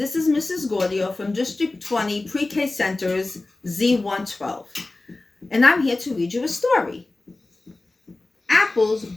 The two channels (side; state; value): right; quieter; 3.1 dB